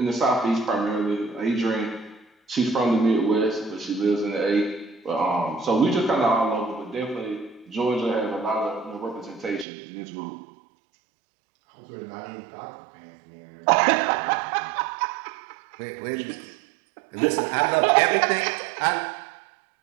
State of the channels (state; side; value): drops out; left; at 9.7 s